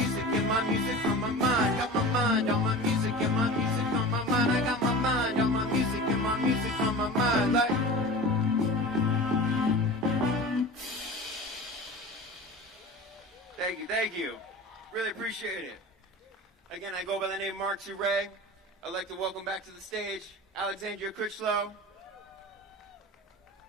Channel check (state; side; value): normal; both; correlation 0.34